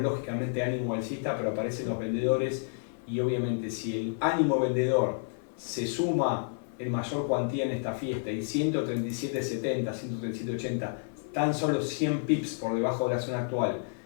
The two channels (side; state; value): right; silent; 58 dB below the other